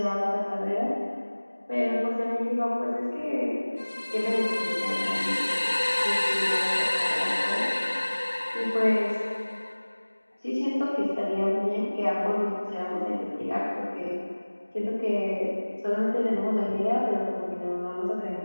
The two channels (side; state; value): both; inverted; correlation -1.00